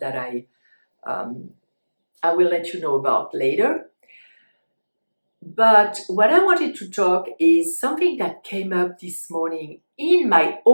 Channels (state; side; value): inverted; both; correlation -1.00